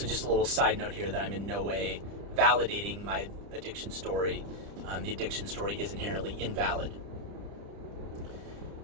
just a little side note here that I'm in no way validating my addiction story. The addiction story is inherently invalid.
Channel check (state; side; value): late; left; 30 ms